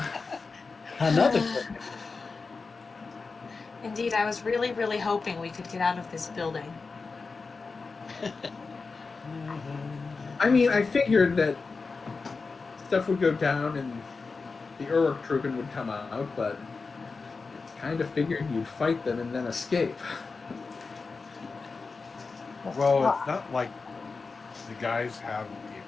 Another Indeed, I was really, really hoping we could get out of this building. I mean, I figured that stuff would go down and the Uruk-Truppen would come out, but kind of figured you'd fight them and then escape. Well, it's not like the guys have the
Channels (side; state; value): right; quieter; 4.3 dB